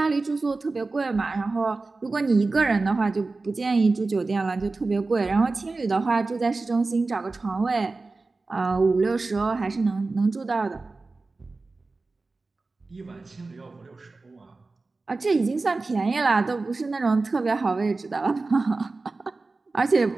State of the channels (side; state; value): left; quieter; 3.6 dB